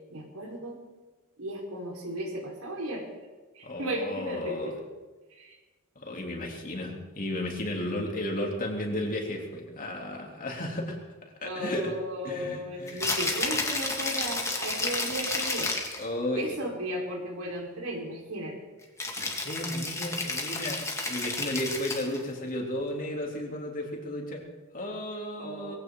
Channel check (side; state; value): both; normal; correlation 0.15